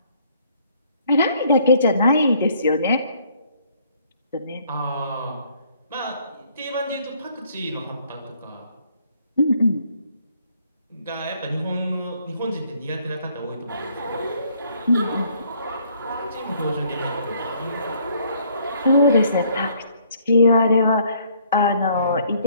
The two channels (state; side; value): inverted; both; correlation -0.63